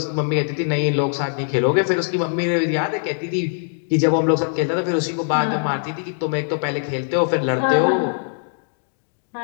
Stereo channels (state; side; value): silent; right; 65 dB below the other